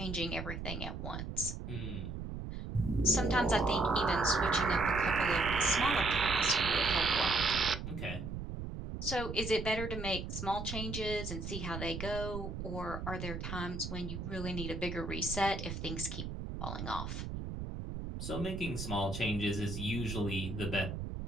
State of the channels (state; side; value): noise; right; rumble, 6 dB below the sound